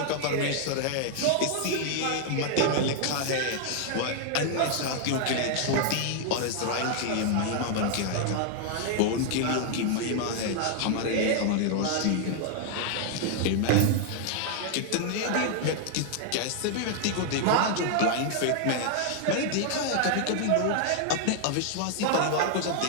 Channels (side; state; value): both; different; correlation 0.00